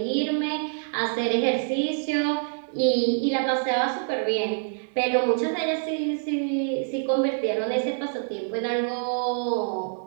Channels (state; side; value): silent; left; 61 dB below the other